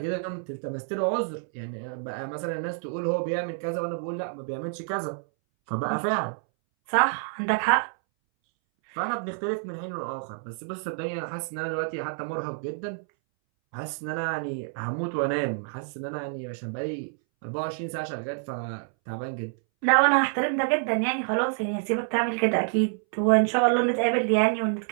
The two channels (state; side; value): silent; left; 60 dB below the other